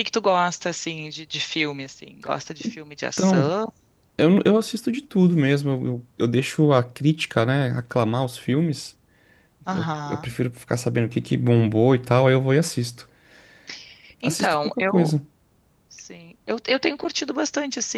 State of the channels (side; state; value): both; identical; correlation 1.00